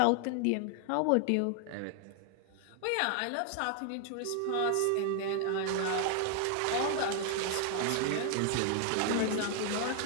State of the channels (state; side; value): different; both; correlation 0.00